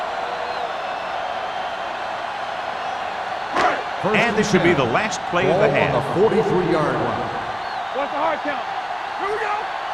And this should be the last play of the half. On the 43-yard line. What's the hard count? Here we go.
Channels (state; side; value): identical; both; correlation 1.00